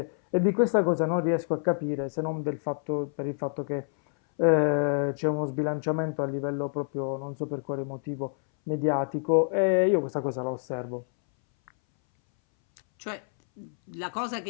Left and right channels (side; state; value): right; silent; 60 dB below the other